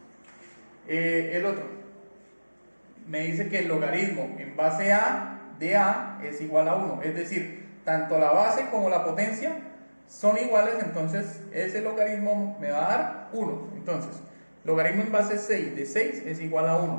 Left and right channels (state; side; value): inverted; both; correlation -1.00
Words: El otro me dice que el logaritmo en base a de a es igual a 1, es decir, tanto la base como la potencia son iguales, entonces ese logaritmo me va a dar 1. Entonces, logaritmo en base 6 de 6 es igual a